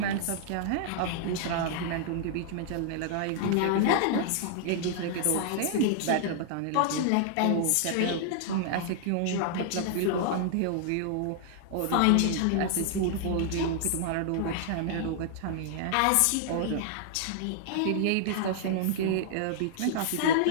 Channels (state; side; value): different; both; correlation -0.01